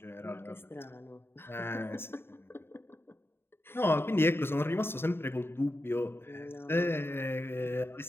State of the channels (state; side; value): late; right; 0.11 ms